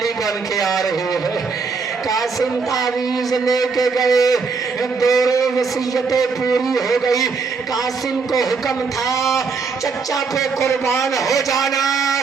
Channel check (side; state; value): left; quieter; 4.9 dB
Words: بن کے آ رہی ہے۔ قاسم تعویذ لے کے گئے، دورے وصیتیں پوری ہو گئی۔ قاسم کو حکم تھا چچا پہ قربان ہو جانا،